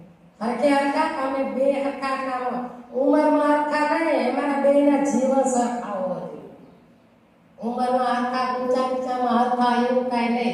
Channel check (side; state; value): both; identical; correlation 1.00